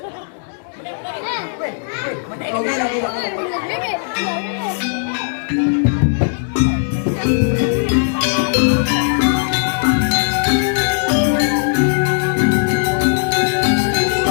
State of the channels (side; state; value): right; silent; digital silence